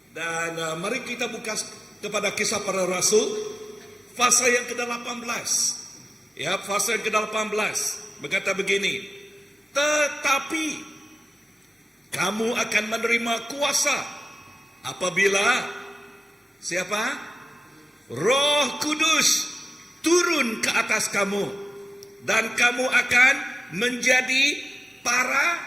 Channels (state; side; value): normal; both; correlation 0.94